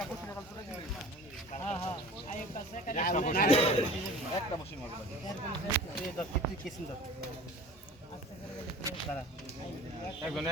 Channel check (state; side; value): normal; both; correlation 0.42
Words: বসে কাল করে হ্যাঁ আই পাশে একটা বসে মারবে এই তো কিছু কেসিং দাও দাদা একজনে